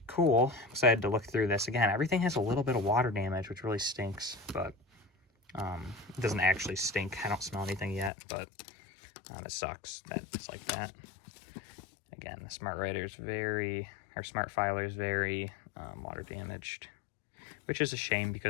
cool. I'm excited to look through this. Again, everything has a little bit of water damage, which really stinks, but It doesn't actually stink. I don't smell anything yet, but it sucks that it's like that. Again, the Smart Writer is Smart Filer is very water damaged, which is a shame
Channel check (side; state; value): right; drops out; at 8.1 s